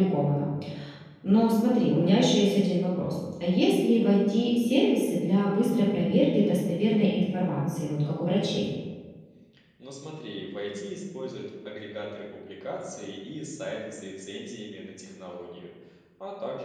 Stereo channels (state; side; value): identical; both; correlation 1.00